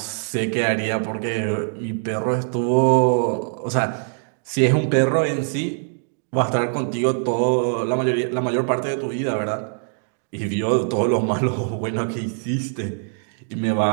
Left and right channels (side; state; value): left; silent; 64 dB below the other